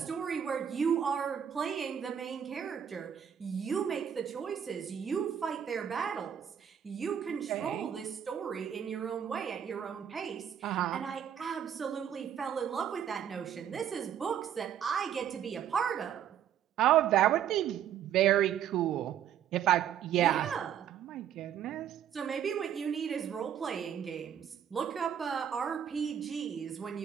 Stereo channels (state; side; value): quieter; left; 9.2 dB